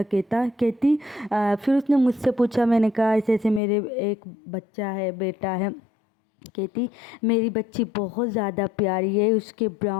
کہتی پھر اس نے مجھ سے پوچھا، میں نے کہا ایسے ایسے میرے ایک بچہ ہے، بیٹا ہے۔ کہتی میری بچی بہت زیادہ پیاری ہے، اس کے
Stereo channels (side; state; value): right; drops out; at 3.6 s